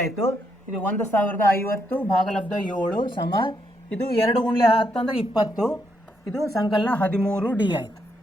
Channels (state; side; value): normal; both; correlation 0.77